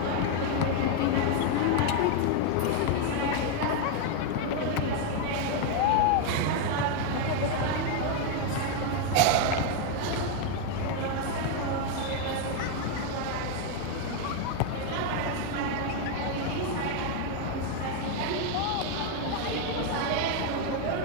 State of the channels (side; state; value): both; different; correlation 0.01